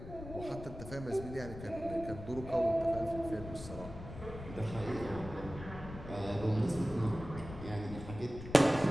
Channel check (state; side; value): noise; left; rumble, 12 dB below the sound